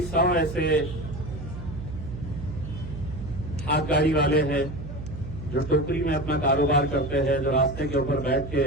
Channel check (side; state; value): right; noise; hum, 9 dB below the sound